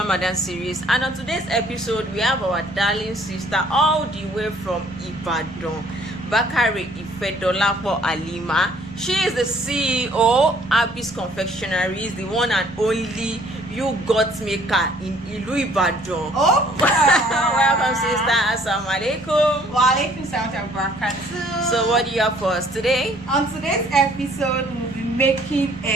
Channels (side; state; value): both; normal; correlation 0.59